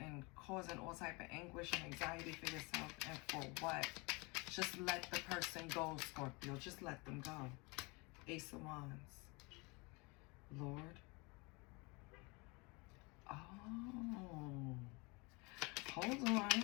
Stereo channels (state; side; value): quieter; right; 27.8 dB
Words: causing all type of anguish and anxiety for yourself. And for what? Just let the person go, Scorpio. Just let them go. Ace of Wands. Lord. Oh. Hold on.